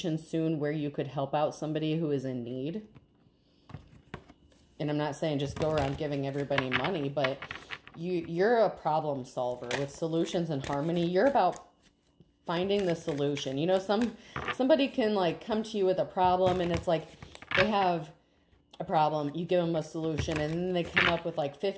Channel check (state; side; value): identical; both; correlation 1.00